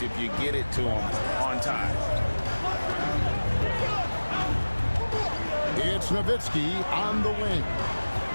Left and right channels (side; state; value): both; inverted; correlation -1.00